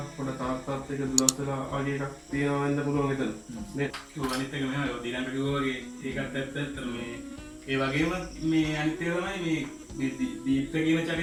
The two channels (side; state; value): both; identical; correlation 1.00